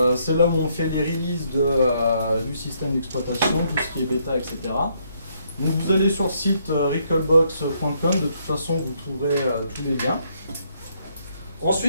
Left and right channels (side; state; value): both; inverted; correlation -0.72